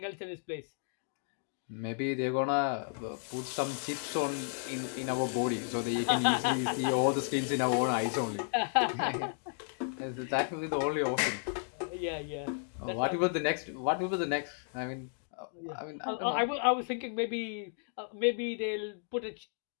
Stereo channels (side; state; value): right; silent; digital silence